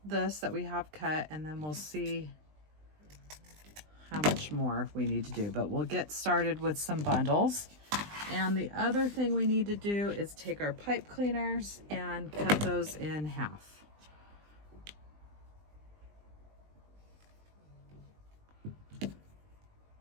this that we have cut, and then we'll see how much more we need to do. But we'll get started with some bundles. And the other thing we need to do is take our pipe cleaners and cut those in half. It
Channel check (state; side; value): late; left; 20 ms